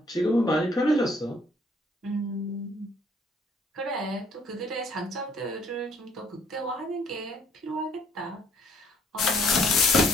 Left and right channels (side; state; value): both; normal; correlation 0.62